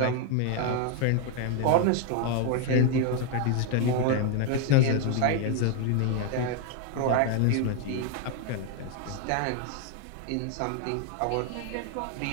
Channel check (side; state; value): both; different; correlation 0.01